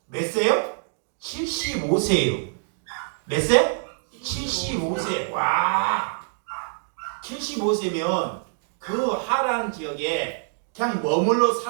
몇 세요? 75세예요. 몇 세? 75세. 와, 75세면 그 하란 지역에 그냥 머물러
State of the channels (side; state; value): left; silent; 62 dB below the other